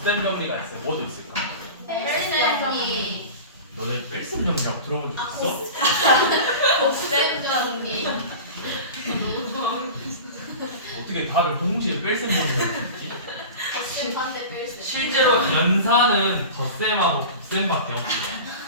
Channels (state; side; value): inverted; both; correlation -0.33